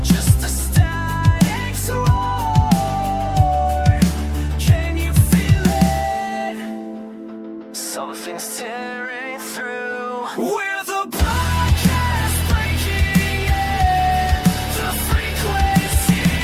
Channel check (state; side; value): identical; both; correlation 1.00